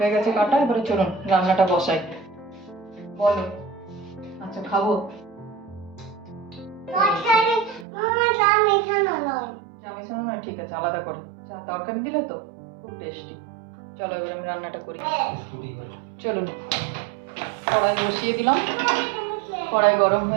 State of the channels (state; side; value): drops out; left; at 7.9 s